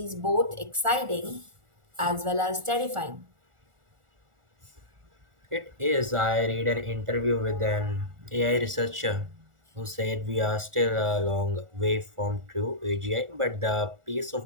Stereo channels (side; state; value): left; late; 1.4 ms